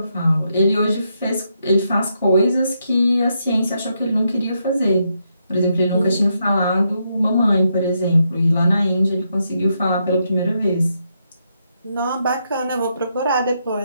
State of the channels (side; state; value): both; inverted; correlation -0.80